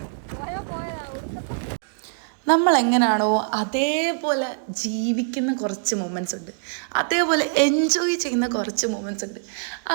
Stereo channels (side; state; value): left; silent; digital silence